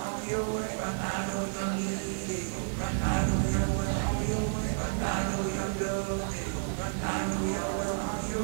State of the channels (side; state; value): left; silent; 57 dB below the other